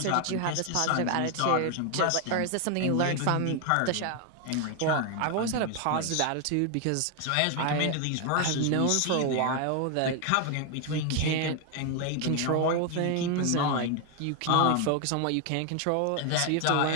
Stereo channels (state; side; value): different; both; correlation 0.01